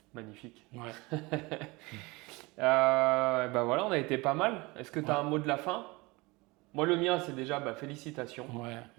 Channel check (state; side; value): quieter; left; 24.1 dB